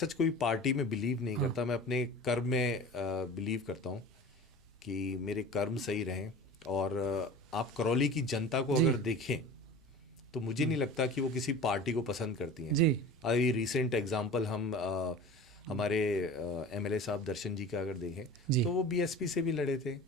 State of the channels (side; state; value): both; normal; correlation 0.37